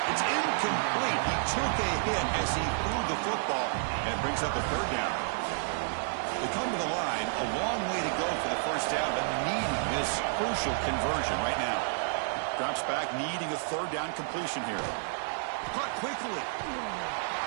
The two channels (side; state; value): left; silent; digital silence